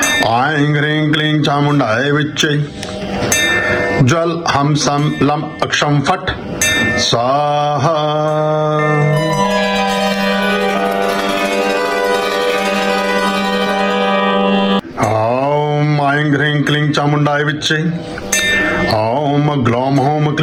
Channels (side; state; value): both; identical; correlation 1.00